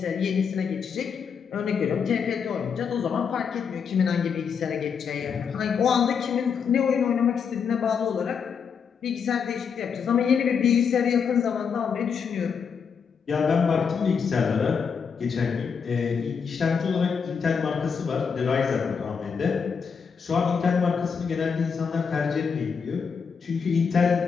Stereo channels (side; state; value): right; quieter; 6.3 dB